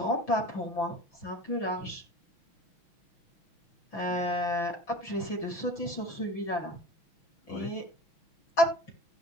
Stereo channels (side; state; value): right; late; 5.9 ms